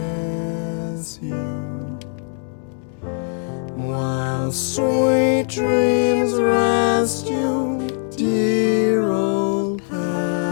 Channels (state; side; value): silent; right; 57 dB below the other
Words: you, while sweet dreams rest you, dear old pal